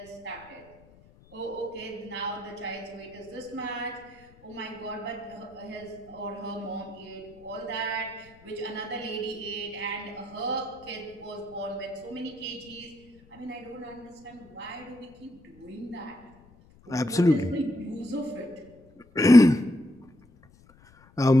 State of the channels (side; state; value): left; noise; rumble, 26 dB below the sound